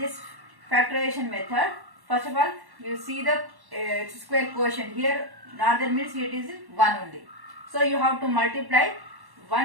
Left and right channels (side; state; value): left; late; 1.1 ms